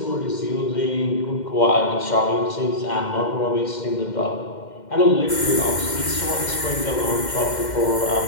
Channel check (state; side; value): late; right; 2.1 ms